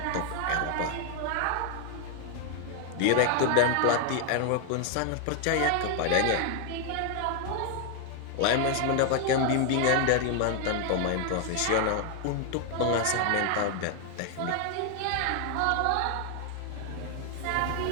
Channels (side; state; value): both; different; correlation 0.00